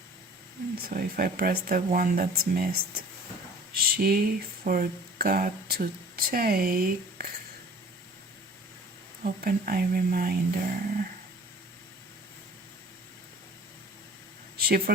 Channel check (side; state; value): both; normal; correlation 0.48